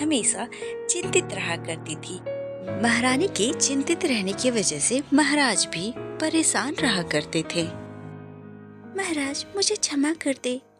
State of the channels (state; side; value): identical; both; correlation 1.00